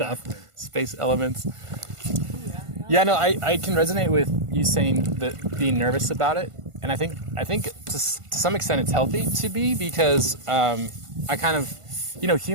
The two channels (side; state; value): left; late; 1.5 ms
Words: Exactly. space elements. Yeah. Yeah, no, I can resonate with you saying that being nervous about it, and I think to some extent it's healthy to be because I kind of,